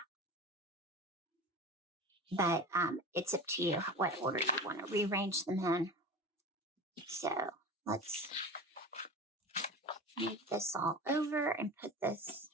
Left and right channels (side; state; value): both; normal; correlation 0.30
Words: But it's up to you what order you want to rearrange them in. So let's move this all over and put this